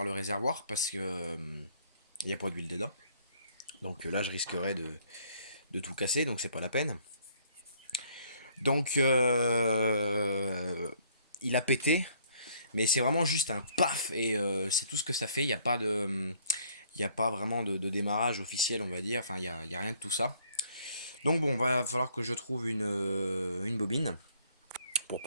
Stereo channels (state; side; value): inverted; both; correlation -0.63